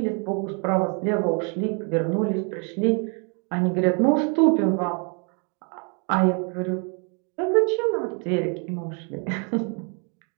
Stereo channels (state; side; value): quieter; left; 36.9 dB